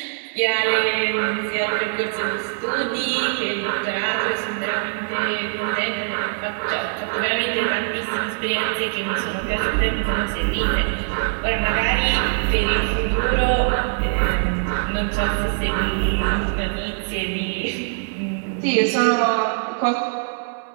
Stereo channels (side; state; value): left; silent; digital silence